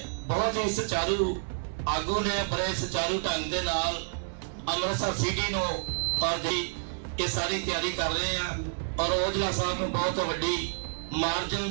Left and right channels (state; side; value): silent; left; digital silence